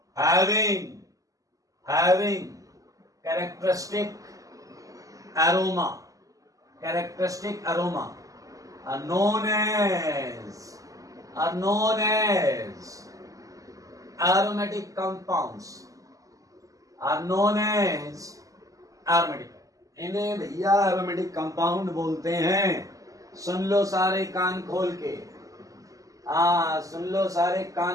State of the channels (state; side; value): late; left; 0.17 ms